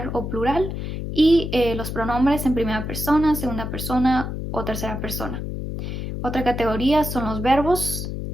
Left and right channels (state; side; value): noise; left; hum, 5 dB below the sound